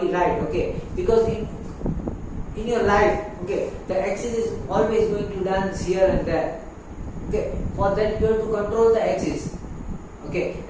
right. Okay, because in your life, okay, the axis is always going to dance here and there. Okay, for that you have to control the axis. Okay,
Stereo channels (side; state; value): both; identical; correlation 1.00